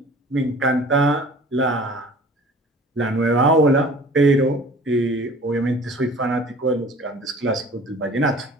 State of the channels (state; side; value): normal; both; correlation 0.46